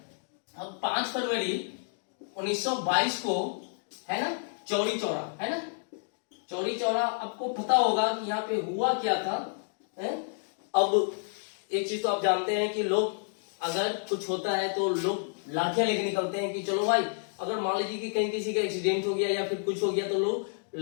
अब 5 फरवरी 1922 को, है ना, चौरी चौरा, है ना, चौरी चौरा। आपको पता होगा कि यहाँ पे हुआ क्या था, है? अब एक चीज तो आप जानते हैं कि लोग अगर कुछ होता है तो लोग लाठियां लेके निकलते हैं कि चलो भाई अगर मान लीजिए कि कहीं किसी का एक्सीडेंट हो गया या फिर कुछ हो गया तो लोग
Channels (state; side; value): silent; right; digital silence